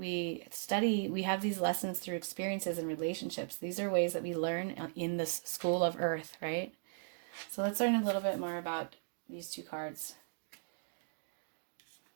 have these lessons through experiences and relationships. These are ways that we learn in this school of earth, right? So let's learn a little bit more about these 2 cards.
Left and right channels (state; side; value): silent; left; digital silence